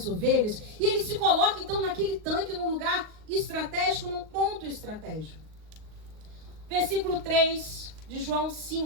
ovelhas. E ele se coloca então naquele tanque, num lugar estratégico, num ponto estratégico. Versículo 3 de João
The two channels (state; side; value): late; left; 39 ms